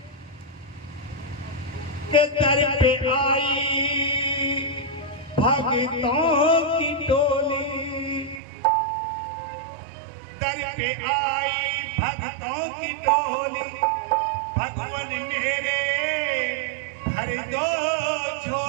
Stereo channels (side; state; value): left; drops out; at 8.4 s